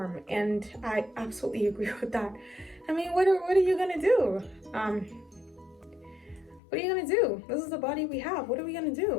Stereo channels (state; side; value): drops out; right; at 6.6 s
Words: And I absolutely agree with that. I mean, what are you gonna do? What are you gonna do? This is the body we have. What are we gonna